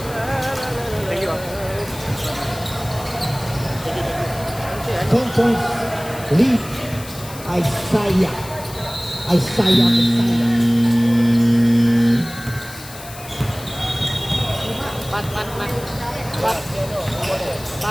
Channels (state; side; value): noise; left; hiss, 15 dB below the sound